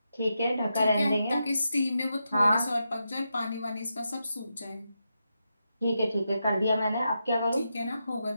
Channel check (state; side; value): inverted; both; correlation -0.86